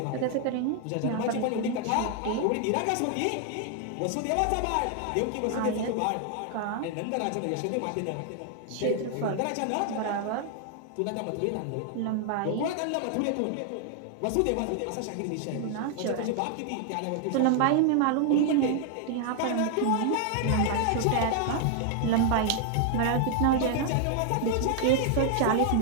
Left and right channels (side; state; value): both; different; correlation 0.00